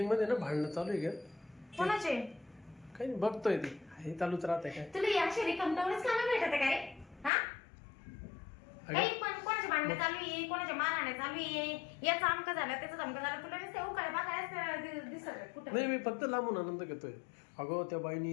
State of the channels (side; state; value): right; drops out; at 7.3 s